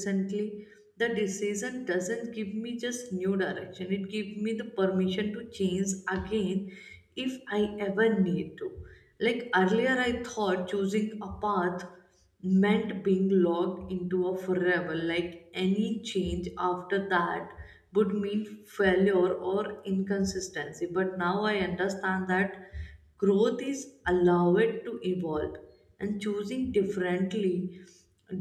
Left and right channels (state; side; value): identical; both; correlation 1.00